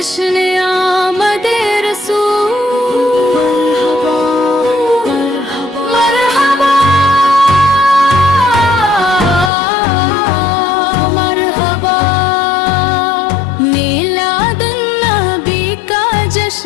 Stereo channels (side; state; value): right; drops out; at 9.5 s